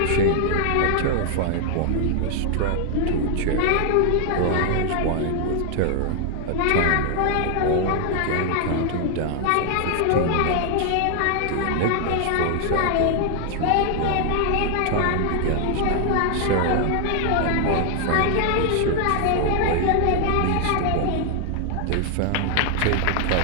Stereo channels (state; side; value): different; both; correlation 0.00